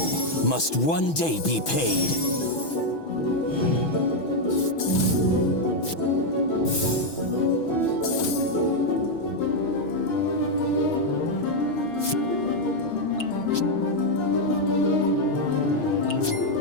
must one day be paid.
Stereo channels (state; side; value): late; right; 6.2 ms